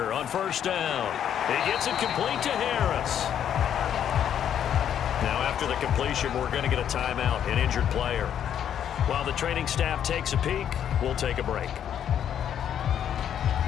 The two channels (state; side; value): quieter; right; 9.5 dB